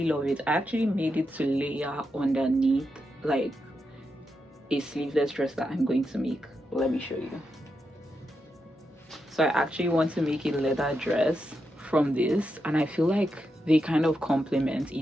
love it. I actually made it to layer underneath like a sleeveless dress that I'm going to make. Let me show you. So I actually want to make a leather dress from this, and I feel like they kind of complement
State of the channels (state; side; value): normal; both; correlation 0.85